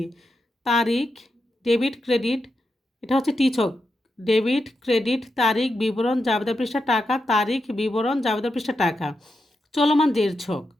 তারিখ, ডেবিট, ক্রেডিট। এটা হচ্ছে টি ছক। ডেবিট, ক্রেডিট, তারিখ, বিবরণ, জাবেদা পৃষ্ঠা, টাকা, তারিখ, বিবরণ, জাবেদা পৃষ্ঠা, টাকা। চলমান জেড ছক,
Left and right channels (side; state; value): both; normal; correlation 0.87